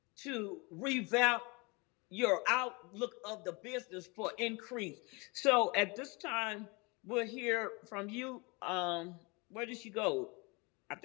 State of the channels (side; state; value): right; quieter; 28.0 dB